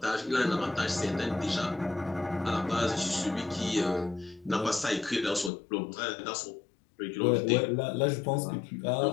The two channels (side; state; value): right; drops out; at 5.5 s